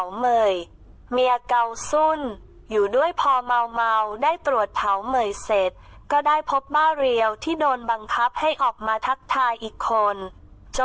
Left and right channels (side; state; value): both; identical; correlation 1.00